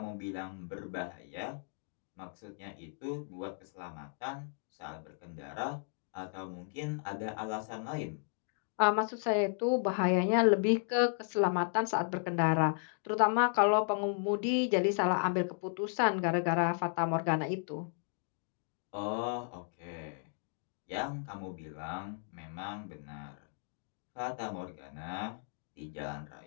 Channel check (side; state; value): right; silent; 55 dB below the other